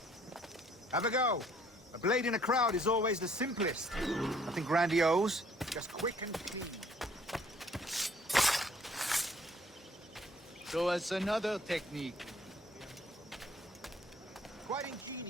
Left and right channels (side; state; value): both; normal; correlation 0.60